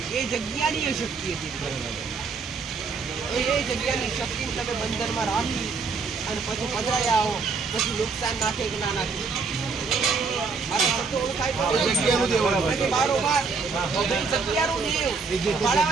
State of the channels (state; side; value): quieter; left; 4.8 dB